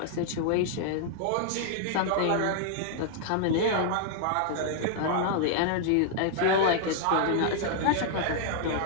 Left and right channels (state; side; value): different; both; correlation -0.01